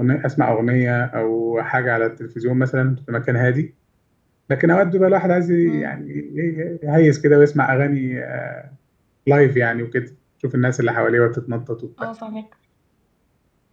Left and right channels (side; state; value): both; identical; correlation 1.00